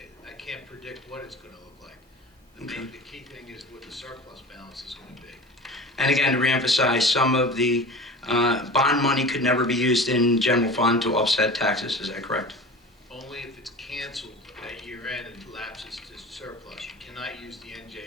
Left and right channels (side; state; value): both; normal; correlation 0.36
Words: I can't predict what it's going to look like. The key thing is what the surplus balance is going to be. And again, to reemphasize, some of the bond money could never be used in general fund to offset taxes, is that correct? Only if it's canceled at year end and lapses to surplus. You cannot use the